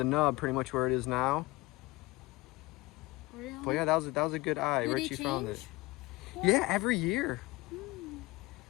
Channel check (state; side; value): quieter; right; 21.3 dB